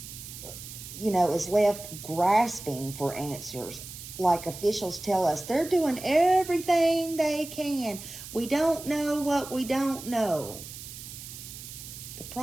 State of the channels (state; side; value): noise; right; hiss, 12 dB below the sound